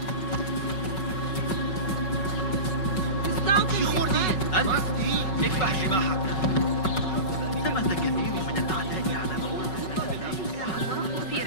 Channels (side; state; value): right; late; 5.4 ms